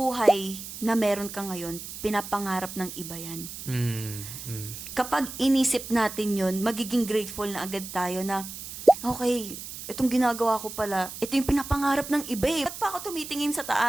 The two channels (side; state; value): right; noise; hiss, 10 dB below the sound